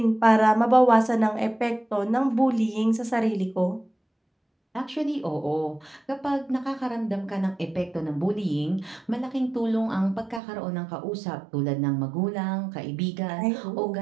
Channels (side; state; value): left; drops out; at 10.4 s